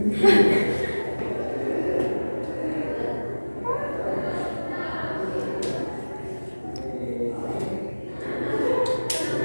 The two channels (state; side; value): inverted; both; correlation -1.00